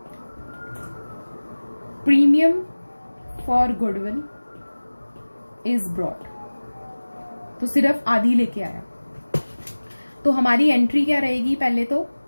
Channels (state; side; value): inverted; both; correlation -1.00